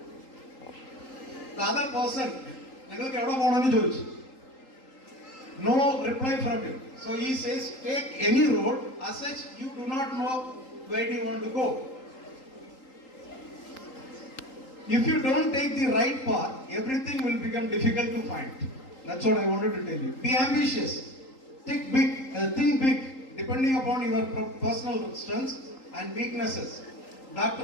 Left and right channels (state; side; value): late; right; 3.8 ms